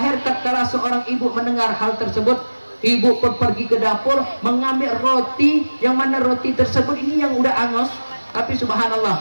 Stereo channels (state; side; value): inverted; both; correlation -1.00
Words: tatkala seorang ibu mendengar hal tersebut, ibu pun pergi ke dapur mengambil roti, yang mana roti tersebut ini yang udah angus. Tapi